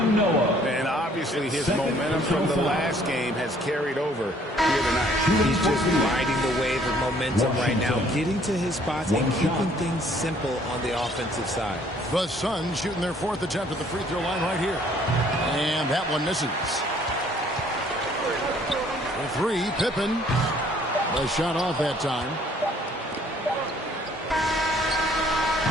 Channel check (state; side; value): normal; both; correlation 0.60